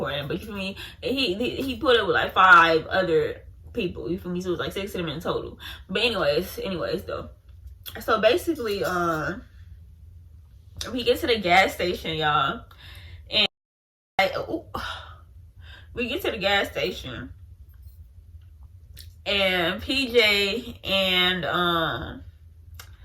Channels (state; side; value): identical; both; correlation 1.00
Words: But you feel me? He put up with like 5 other people. You feel me? So it was like 6 of them in total. But anyways though. So basically, we get to the gas station, y'all, and like, we get to the gas station, and PJ and